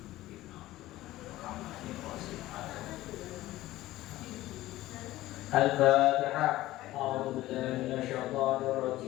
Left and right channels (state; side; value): quieter; right; 16.2 dB